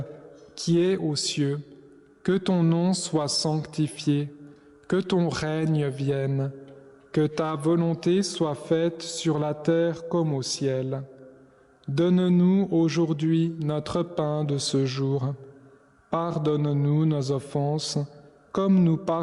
qui es aux cieux, que ton nom soit sanctifié, que ton règne vienne, que ta volonté soit faite sur la terre comme au ciel. Donne-nous aujourd'hui notre pain de ce jour. Pardonne-nous nos offenses, comme nous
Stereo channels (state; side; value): identical; both; correlation 1.00